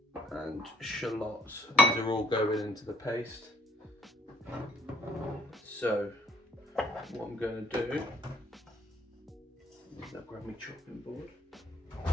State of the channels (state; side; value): normal; both; correlation 0.62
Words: and shallots. These are all going into the paste. So what I'm going to do, I'll grab my chopping board.